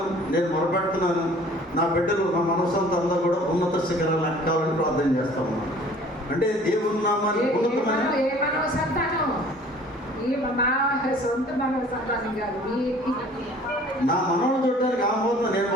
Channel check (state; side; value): normal; both; correlation 0.51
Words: నేను మొరపెడుతున్నాను. నా బిడ్డలు, నా మనసంతా అందరూ కూడా ఉన్నత శిఖరాలు ఎక్కాలని ప్రార్థన చేస్తాము. అంటే దేవుని నామాన్ని ఉన్నతమైన సొంత మనోసంతానం కాదు. నా మనవాళ్ళు చూడటానికి ఆహ్వానం నేను